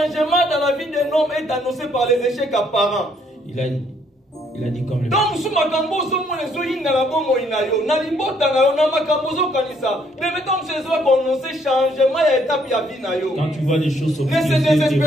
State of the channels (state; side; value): normal; both; correlation 0.68